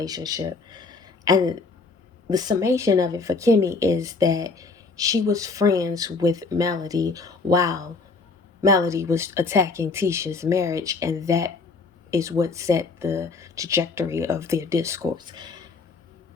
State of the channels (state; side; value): quieter; right; 4.1 dB